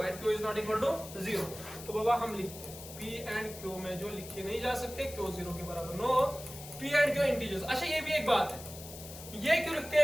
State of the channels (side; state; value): left; noise; hiss, 13 dB below the sound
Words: q is not equal to 0। तो बाबा हम लिखते हैं p and q में जो लिखे नहीं जा सकते, q 0 के बराबर no, p and q integers. अच्छा ये भी एक बात है, ये क्यों लिखते